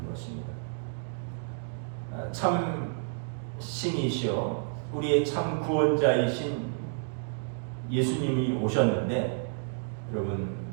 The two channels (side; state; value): left; silent; digital silence